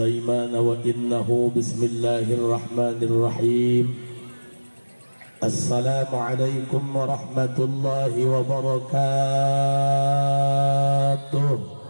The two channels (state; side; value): inverted; both; correlation -1.00